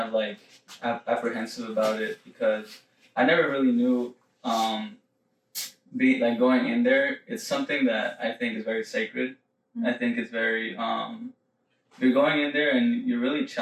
like apprehensive about it, because I never really knew going in there, it's something that I think is very sacred. I think it's very you're going in there and you're really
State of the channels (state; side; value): identical; both; correlation 1.00